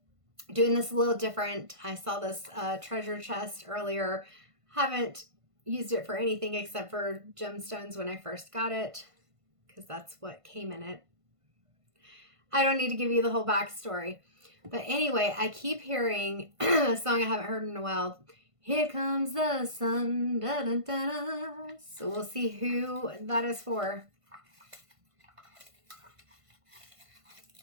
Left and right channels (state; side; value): late; left; 1.5 ms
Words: doing this a little different. I saw this treasure chest earlier. Haven't used it for anything except for gemstones when I first got it, because that's what came in it. I don't need to give you the whole backstory. But anyway, I keep hearing a song I haven't heard in a while. Here comes the sun. Da, da, da, da. So we'll see who that is for.